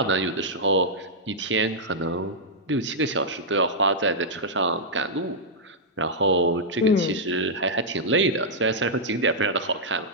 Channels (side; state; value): both; normal; correlation -0.08